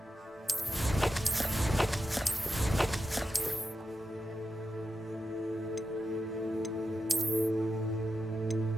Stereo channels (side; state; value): both; normal; correlation 0.87